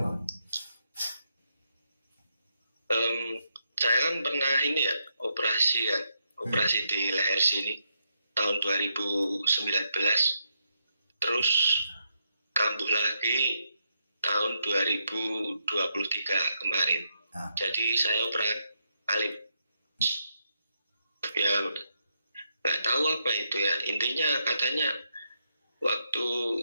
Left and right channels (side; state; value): both; inverted; correlation -0.81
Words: Saya kan pernah ini ya, operasi di leher sini tahun 2019. Terus kambuh lagi tahun 2023 kemarin. Jadi saya operasi alip. Ya nggak tahu apa itu ya. Intinya katanya waktu